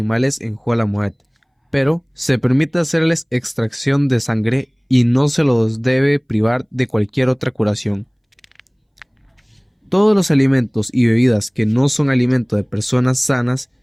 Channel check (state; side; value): identical; both; correlation 1.00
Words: en Jolamuet, pero se permite hacerles extracción de sangre y no se los debe privar de cualquier otra curación. Todos los alimentos y bebidas que no son alimento de personas sanas,